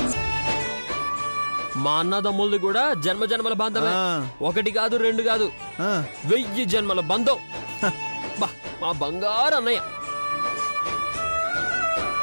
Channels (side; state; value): both; inverted; correlation -1.00